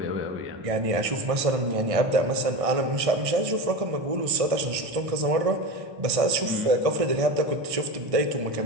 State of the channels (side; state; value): left; late; 1.6 ms